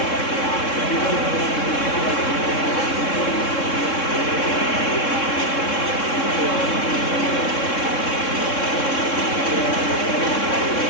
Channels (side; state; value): right; late; 3.6 ms